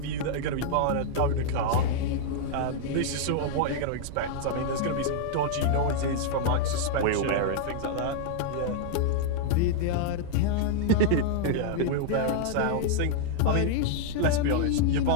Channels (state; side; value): different; both; correlation -0.01